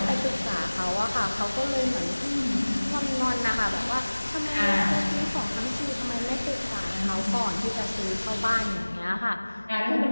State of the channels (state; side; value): inverted; both; correlation -1.00